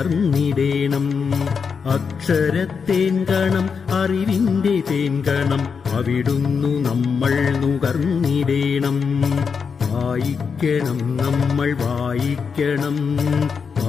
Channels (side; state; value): right; quieter; 5.9 dB